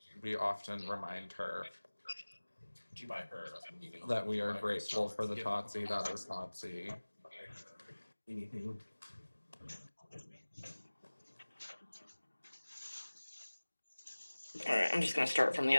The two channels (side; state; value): both; inverted; correlation -1.00